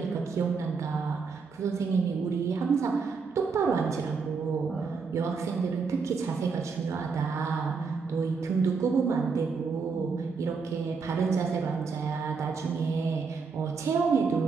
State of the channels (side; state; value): left; quieter; 5.0 dB